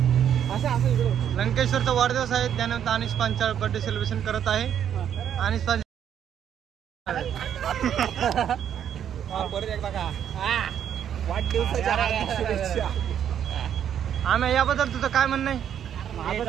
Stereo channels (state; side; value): quieter; left; 9.3 dB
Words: असं इकडं लंकेश्वरचा वाढदिवस आहे त्यानंतर अनिश पांचाळ बर्थडे सेलिब्रेशन करत आहे. अनिश पांचाळ परत एकदा का वाढदिवसाच्या शुभेच्छा. आम्ही याबद्दल तुझं काय म्हणणं आहे?